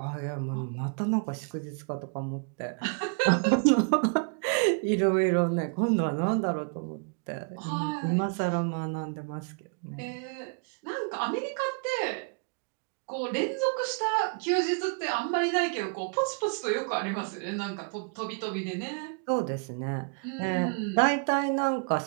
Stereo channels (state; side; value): quieter; left; 38.2 dB